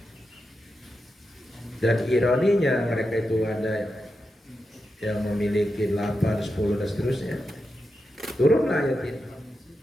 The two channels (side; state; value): both; normal; correlation 0.88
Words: dan ironinya mereka itu ada yang memiliki 8, 10 dan seterusnya, turunlah ayat ini